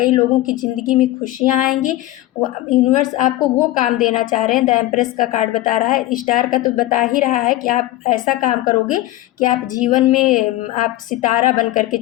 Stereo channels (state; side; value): quieter; right; 16.2 dB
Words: लोगों की ज़िंदगी में खुशियाँ आएंगी। वो यूनिवर्स आपको वो काम देना चाह रहे हैं। द एम्प्रेस का कार्ड बता रहा है, स्टार का तो बता ही रहा है कि आप ऐसा काम करोगे कि आप जीवन में आप सितारा बन करके